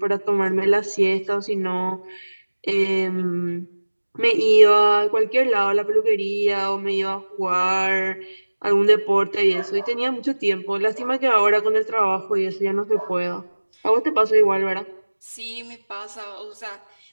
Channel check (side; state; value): both; inverted; correlation -1.00